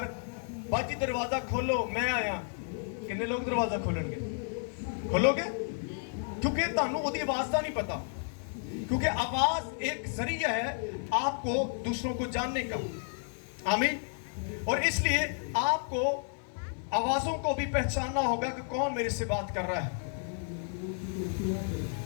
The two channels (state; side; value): silent; right; 57 dB below the other